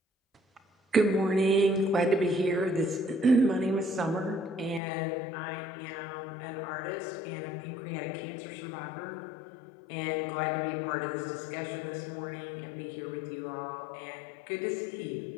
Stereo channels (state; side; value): drops out; right; at 4.8 s